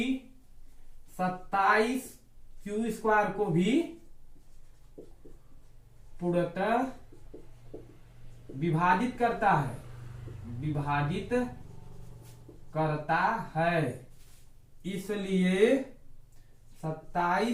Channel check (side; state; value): both; identical; correlation 1.00